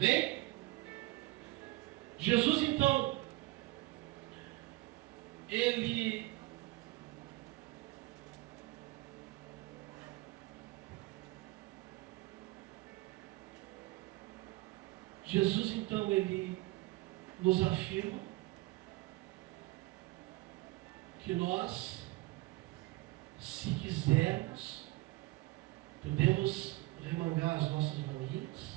Jesus, então, ele nos afirma que nós, se quisermos, podemos remangar as nossas manguinhas,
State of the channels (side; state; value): left; quieter; 20.4 dB